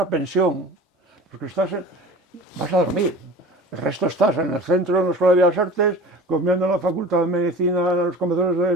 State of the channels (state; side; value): normal; both; correlation 0.39